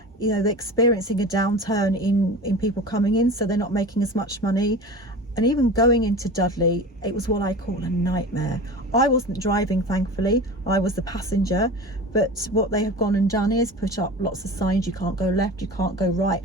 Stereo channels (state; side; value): normal; both; correlation 0.33